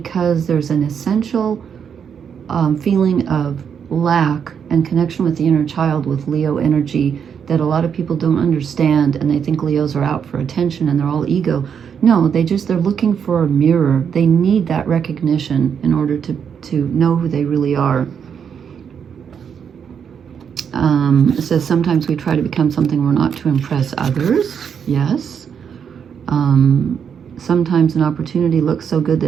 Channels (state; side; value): quieter; left; 7.4 dB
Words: there's an essential feeling of lack and connection with the inner child with Leo energy that a lot of people don't understand, and they think Leos are out for attention and they're all ego. No, they're looking for a mirror. They need that recognition in order to know who they really are. It says sometimes we try to become something we're not to impress others. Yes. Sometimes an opportunity looks so good